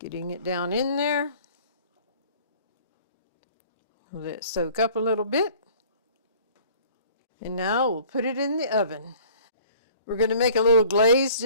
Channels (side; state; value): both; inverted; correlation -0.52